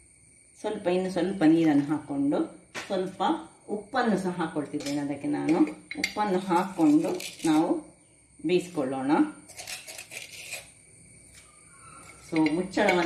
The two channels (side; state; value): both; identical; correlation 1.00